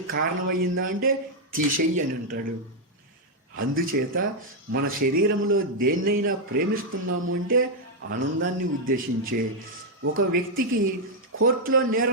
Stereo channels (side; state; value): both; normal; correlation -0.01